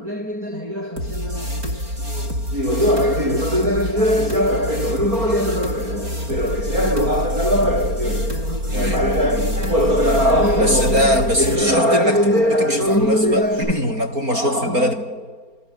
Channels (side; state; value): left; late; 4.3 ms